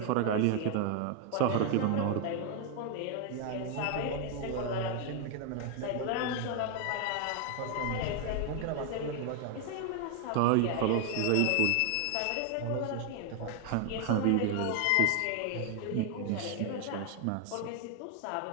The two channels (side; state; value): both; different; correlation 0.00